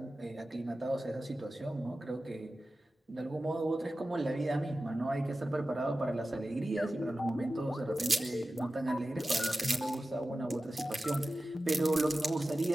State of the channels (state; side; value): normal; both; correlation 0.95